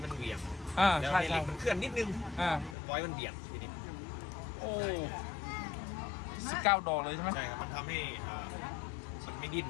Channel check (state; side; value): drops out; right; at 2.8 s